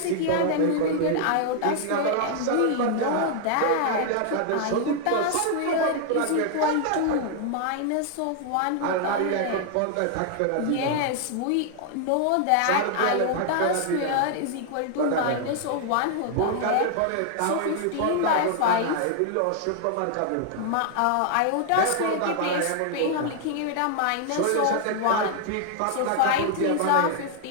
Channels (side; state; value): both; different; correlation 0.00